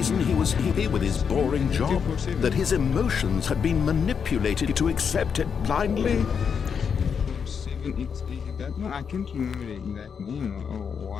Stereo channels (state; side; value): quieter; right; 6.7 dB